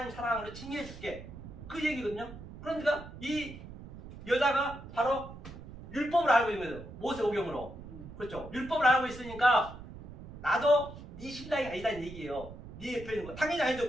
사랑으로 칭의해 줄게. 그 얘기거든요. 그러니까 이 여자가 바로 율법을 알고 있는 거예요. 모세오경으로. 그렇죠. 율법을 알고 있으니까 나도 네 신랑이 아니다는 얘기예요. 네 옆에 있는 거. 당연히 아니죠.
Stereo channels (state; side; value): noise; right; rumble, 14 dB below the sound